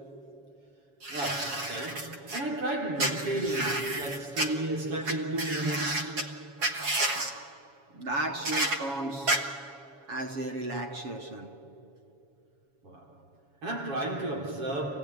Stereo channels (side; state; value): left; late; 7.2 ms